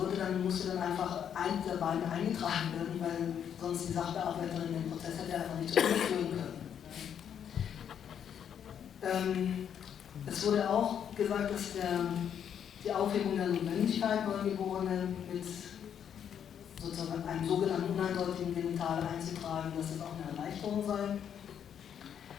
musste dann einfach eins der beiden eingetragen werden, weil sonst die Sachbearbeiterin den Prozess hätte einfach nicht durchführen können. Es wurde auch gesagt, dass die Aufhebung der Notwendigkeit, Neugeborene mit sozusagen einem sogenannten uneindeutigen Genital einzutragen, dass das auch eine Erleichterung sei.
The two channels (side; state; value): right; quieter; 8.7 dB